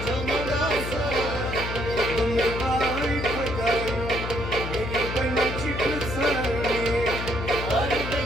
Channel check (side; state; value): left; noise; hum, 6 dB below the sound